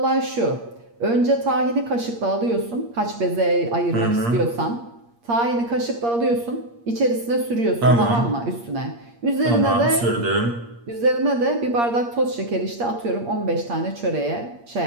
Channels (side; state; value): left; late; 8.5 ms